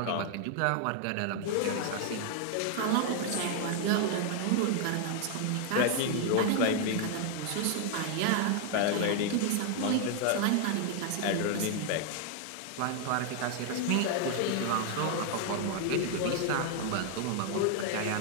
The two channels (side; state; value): both; different; correlation 0.00